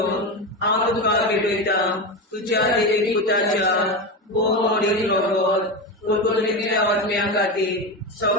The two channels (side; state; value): both; normal; correlation 0.18